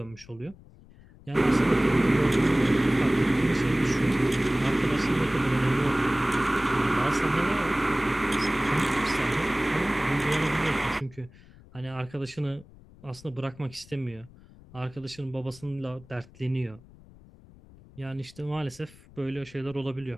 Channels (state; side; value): noise; left; rumble, 23 dB below the sound